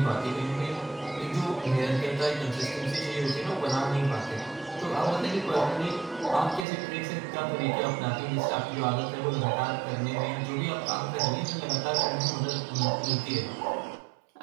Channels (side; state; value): left; drops out; at 6.7 s